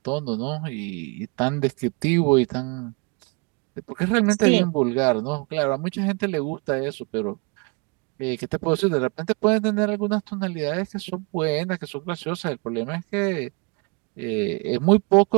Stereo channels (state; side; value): quieter; left; 32.4 dB